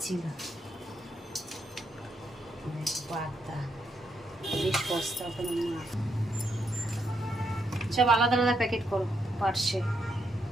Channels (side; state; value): both; normal; correlation 0.79